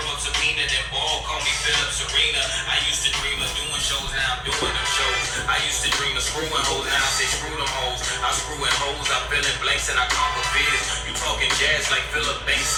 Sabina, then ball, call me Philip Serena. I used to dream of doing shows, now I'm doing them shows. I used to dream of screwing hoes, now I say screw them hoes. I'm screwing hoes, I fill in blanks and I conquer fears. You talking jazz like Philip Banks,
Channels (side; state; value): both; identical; correlation 1.00